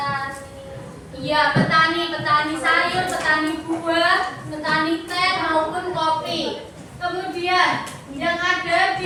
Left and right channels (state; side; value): identical; both; correlation 1.00